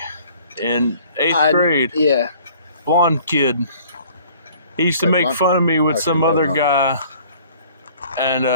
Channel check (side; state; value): both; inverted; correlation -0.53